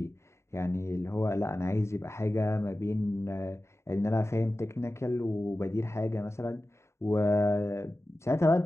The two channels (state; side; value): late; right; 0.13 ms